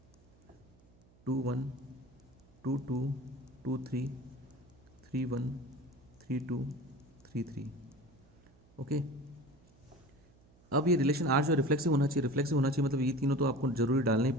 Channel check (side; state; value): right; noise; hum, 28 dB below the sound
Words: 2 1 2 2 2 3 3 1 3 2 3 3। ओके, अब ये रिलेशन आर जो रिफ्लेक्सिव होना चाहिए, रिफ्लेक्सिव होना चाहिए मतलब ये तीनों तो आपको जरूरी डालने ही